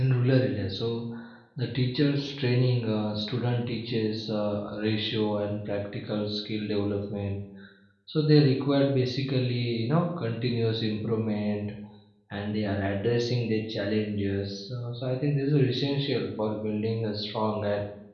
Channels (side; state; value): both; identical; correlation 1.00